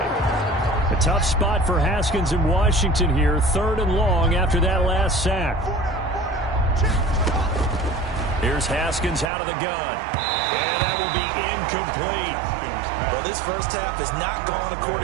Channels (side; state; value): left; drops out; at 9.3 s